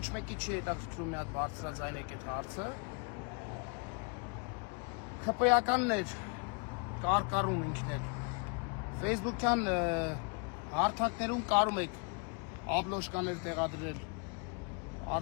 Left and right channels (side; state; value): right; quieter; 36.3 dB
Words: մեկի չի հետաքրքրում մի հատ բարձրաձայնեք այդ հարցը։ ԽՊ-ականներ կարկառում ինքներ։ Facebook-յան հարթակներում կարում եք աբլոշկաներ տեղադրել,